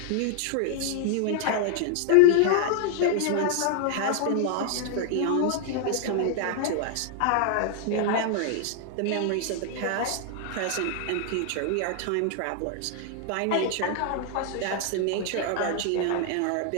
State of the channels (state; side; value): different; both; correlation 0.00